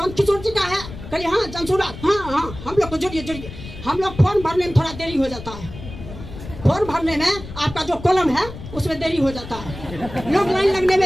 किशोर जी का है? कहिए हाँ जनसुराज, हाँ हम लोग को जुड़िए। हम लोग फॉर्म भरने में थोड़ा देरी हो जाता है। फॉर्म भरने में आपका जो कॉलम है उसमें देरी हो जाता है। लोग लाइन लगने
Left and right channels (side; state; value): left; noise; rumble, 13 dB below the sound